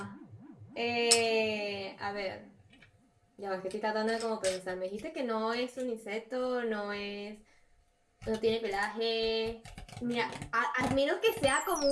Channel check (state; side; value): identical; both; correlation 1.00